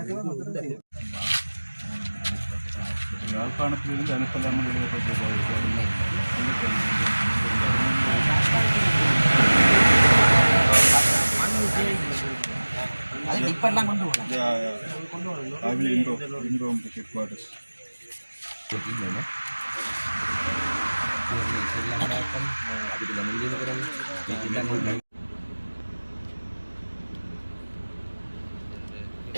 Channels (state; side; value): inverted; both; correlation -1.00